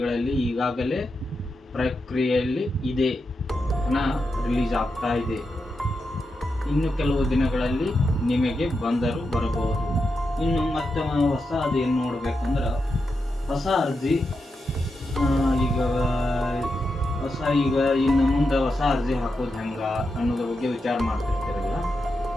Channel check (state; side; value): normal; both; correlation 0.87